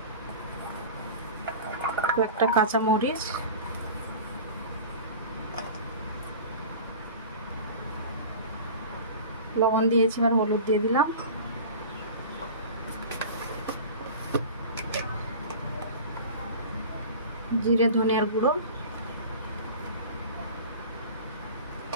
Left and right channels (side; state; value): both; inverted; correlation -0.36